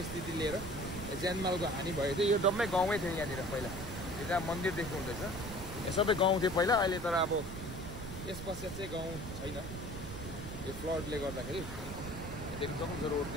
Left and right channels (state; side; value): noise; right; rumble, 9 dB below the sound